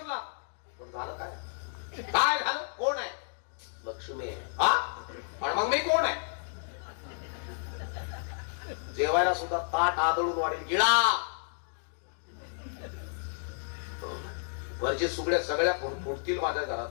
पण झालं काय? काय झालं? कोण आहे? लक्ष्मी आहे. हा पण मग मी कोण आहे? जेवायला सुद्धा ताट आदळून वाढेल गिळा. वरचे सुगड्या सगळ्या फुटतील माझ्या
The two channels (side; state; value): right; silent; digital silence